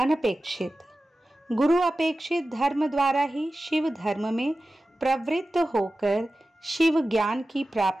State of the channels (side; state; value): both; normal; correlation 0.95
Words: गुरु अपेक्षित धर्म द्वारा ही शिव धर्म में प्रवृत्त होकर शिव ज्ञान की